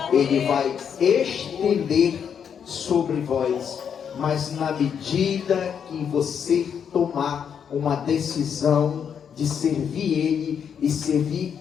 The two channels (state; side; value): quieter; right; 7.6 dB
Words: Ele vai estender sobre vós, mas na medida que você tomar uma decisão de servir Ele, e servir